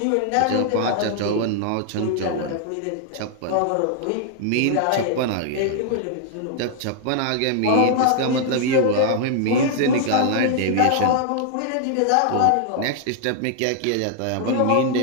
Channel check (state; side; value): different; both; correlation 0.00